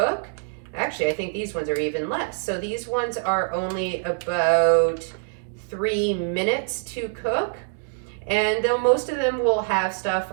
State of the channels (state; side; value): silent; left; digital silence